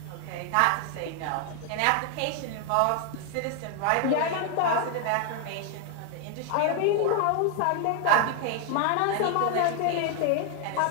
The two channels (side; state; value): both; different; correlation 0.01